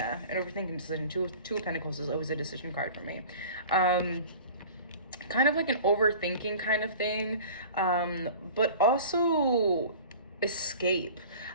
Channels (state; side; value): inverted; both; correlation -0.41